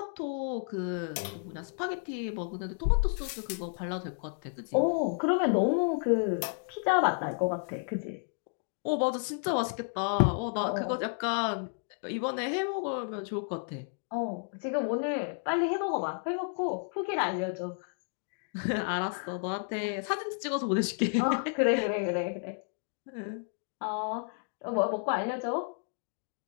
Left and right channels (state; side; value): silent; right; 57 dB below the other